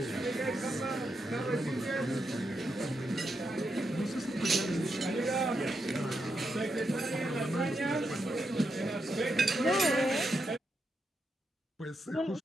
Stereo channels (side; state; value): both; normal; correlation 0.84